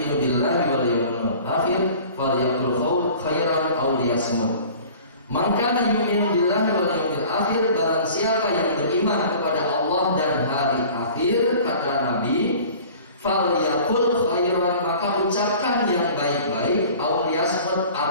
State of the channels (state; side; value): inverted; both; correlation -0.45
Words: billahi wal yaumil akhir falyaqul khairan aw liyasmut." Man kana yu'minu billahi wal yaumil akhir, barang siapa yang beriman kepada Allah dan hari akhir, kata Nabi, falyaqul khairan, maka ucapkan yang baik-baik, aw liyasmut,